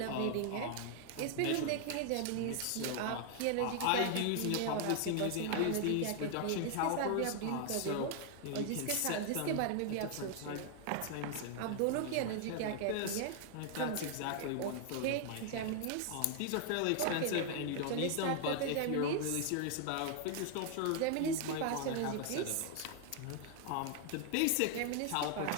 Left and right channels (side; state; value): both; different; correlation 0.00